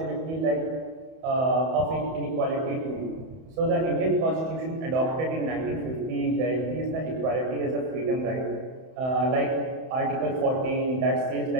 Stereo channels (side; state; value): left; late; 31 ms